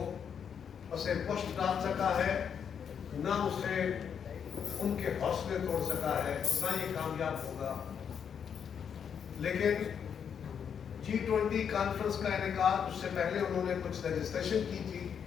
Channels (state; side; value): quieter; right; 7.6 dB